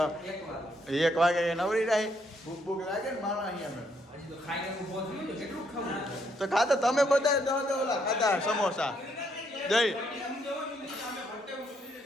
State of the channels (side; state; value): both; normal; correlation 0.73